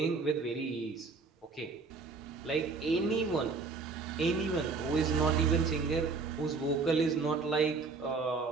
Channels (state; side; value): quieter; left; 4.4 dB